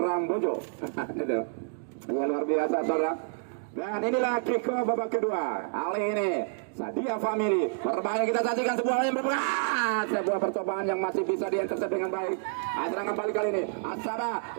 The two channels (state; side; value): silent; left; digital silence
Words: Bojo. Ya, luar biasa saudara. Dan inilah kick-off babak kedua. Kali ini Sedia Family berbahaya, kita saksikan sebuah percobaan yang masih bisa diintercept dengan baik. Serangan balik kali ini Asara